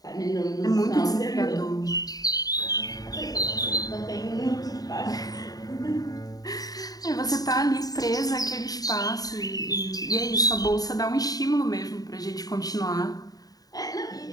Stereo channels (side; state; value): right; late; 0.18 ms